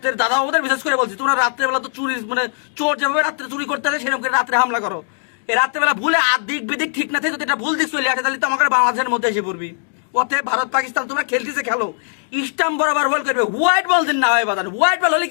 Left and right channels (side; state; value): right; silent; digital silence